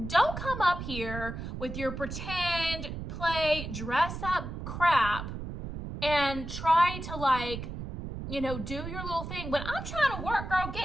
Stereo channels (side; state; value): right; noise; rumble, 7 dB below the sound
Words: don't come up here with your pretend, play, dress up crap and try to like, do your little thing. When I'm trying to work, girl,